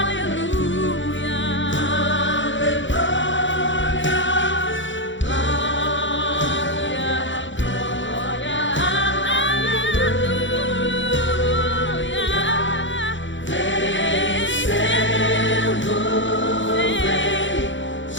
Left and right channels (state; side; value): late; right; 0.55 ms